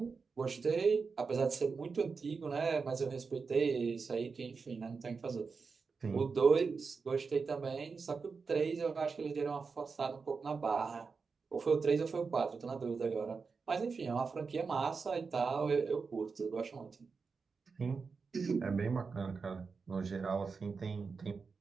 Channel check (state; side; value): quieter; left; 4.9 dB